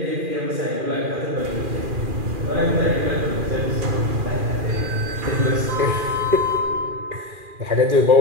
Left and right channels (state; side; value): late; left; 2.4 ms